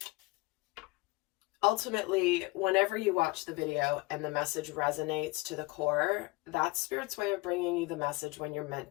ultimately, whenever you watch the video and the message resonates to the core, that's Spirit's way of bringing you the message when you're meant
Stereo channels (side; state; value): right; quieter; 23.4 dB